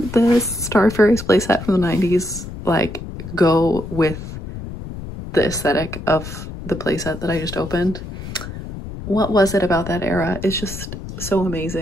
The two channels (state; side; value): noise; left; rumble, 10 dB below the sound